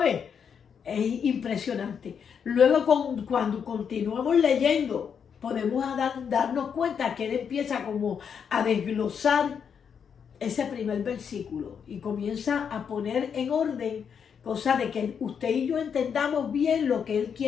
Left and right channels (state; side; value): quieter; right; 7.2 dB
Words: Es impresionante. Luego cuando continuamos leyendo, podemos darnos cuenta que él empieza como a desglosar ese primer versículo y comienza a poner en orden, cosa de que usted y yo entendamos bien lo que él